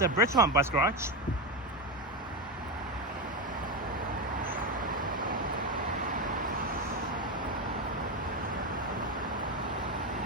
Bridgemont bus garage.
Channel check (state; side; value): normal; both; correlation 0.13